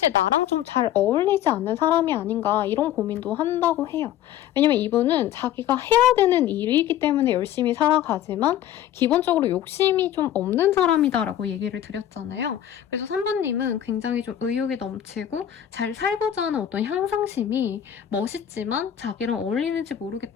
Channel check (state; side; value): quieter; right; 11.2 dB